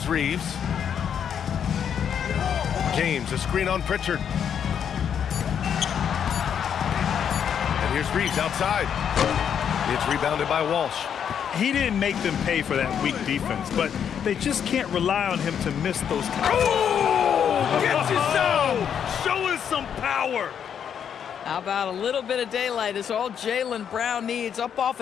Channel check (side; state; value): right; quieter; 8.2 dB